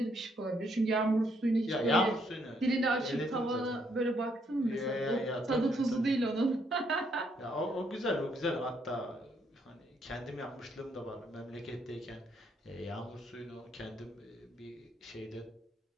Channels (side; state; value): both; normal; correlation 0.72